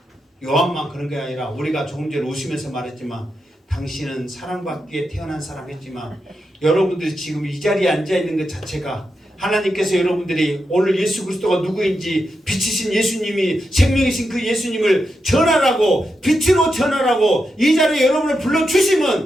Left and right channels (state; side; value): normal; both; correlation 0.86